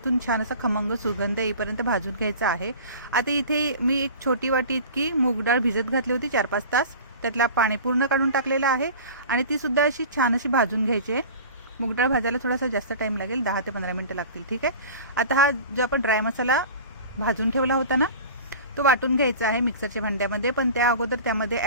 छान असा खमंग सुगंध येईपर्यंत भाजून घ्यायचं आहे. आता इथे मी एक छोटी वाटी इतकी मूग डाळ भिजत घातली होती 4-5 तास. त्यातला पाणी पूर्ण काढून टाकलेलं आहे आणि ती सुद्धा अशी छान अशी भाजून घ्यायची आहे. मूग डाळ भाजायला थोडासा जास्त टाइम लागेल, 10 ते 15 मिनिटं लागतील. ठीक आहे. आता हा जो आपण ड्राय मसाला भाजून ठेवला होता ना, तो वाटून घ्यायचा आहे मिक्सरच्या भांड्यामध्ये. पण त्या अगोदर त्यामध्ये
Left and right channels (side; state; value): both; inverted; correlation -0.38